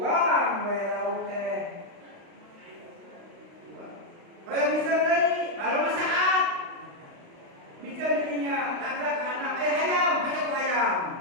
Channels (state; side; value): late; left; 35 ms